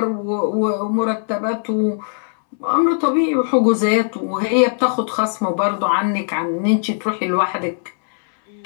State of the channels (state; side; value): silent; right; 66 dB below the other